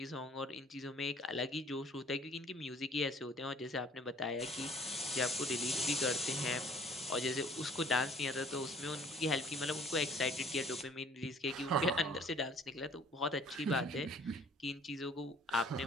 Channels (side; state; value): both; normal; correlation 0.55